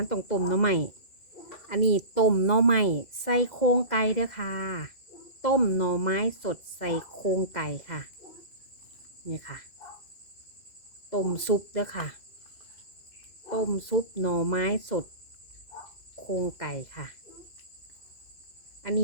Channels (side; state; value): right; late; 2.0 ms